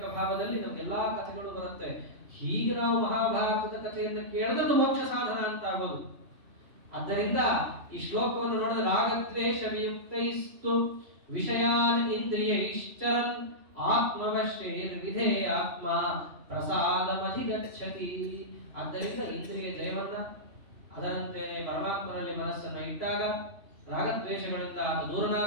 ಭಾವದಲ್ಲಿ ನಮ್ಗೆಲ್ಲಾ ಕಥೆಗಳು ಬರುತ್ತೆ. ಹೀಗೆ ನಾವು ಮಹಾಭಾರತದ ಕಥೆಯನ್ನು ಕೇಳಿದ್ರೆ ಮೋಕ್ಷ ಸಾಧನ ಅಂತ ಆಗೋದು. ಆದ್ದರಿಂದ ಈ ಶ್ಲೋಕವನ್ನು ನೋಡಿದ್ರೆ ರಾಗದ್ವೇಷ ವಿಯುಕ್ತೈಸ್ತು ವಿಷಯಾನ್ ಇಂದ್ರಿಯ ಇಷ್ಟರನ್ ಆತ್ಮವಶ್ಯೈರ್ ವಿಧೇಯಾತ್ಮ ಪ್ರಸಾದಮಧಿಗಚ್ಚತಿ. ಆದ್ದರಿಂದ ಇಂದ್ರಿಯ ಜಯವನ್ನ, ಅದರಂತೆಯೇ ಪರಮಾತ್ಮನಲ್ಲಿ ಮನಸ್ಸನ್ನು ಇಟ್ಟಾಗ, ರಾಗದ್ವೇಷಗಳಿಂದ ಆತ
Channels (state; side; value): late; left; 3.0 ms